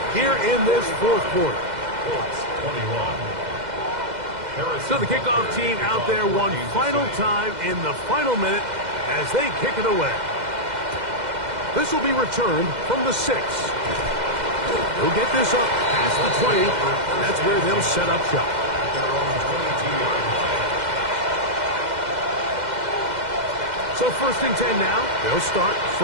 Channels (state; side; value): late; left; 2.0 ms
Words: here in this fourth quarter. So the kickoff team out there one final time in the final minute as they kick it away. This will be returned from the 6. They'll get this up past the 20. That's where they'll set up shop. So first and 10 now. They'll start